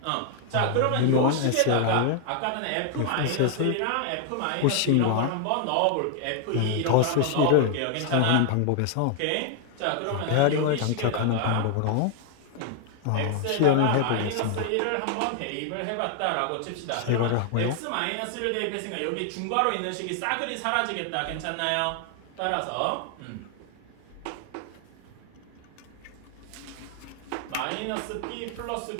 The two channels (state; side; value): different; both; correlation 0.00